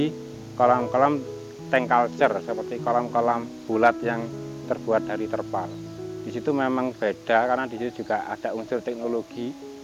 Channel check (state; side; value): identical; both; correlation 1.00